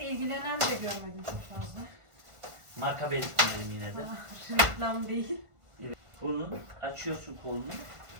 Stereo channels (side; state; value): left; late; 1.5 ms